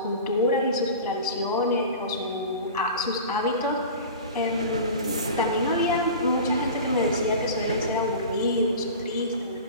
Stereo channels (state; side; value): inverted; both; correlation -0.35